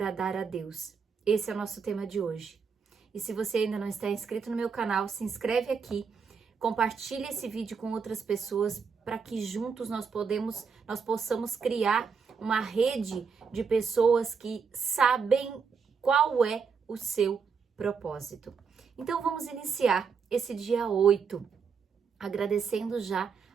a Deus. Esse é o nosso tema de hoje. E se você ainda não está inscrito no meu canal, se inscreve aqui, compartilhe esse vídeo com outras pessoas para que juntos nós possamos criar uma rede de pessoas que sabem qual é o seu propósito. Então vamos iniciar esse dia 8, agradecendo já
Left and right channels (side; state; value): left; quieter; 5.9 dB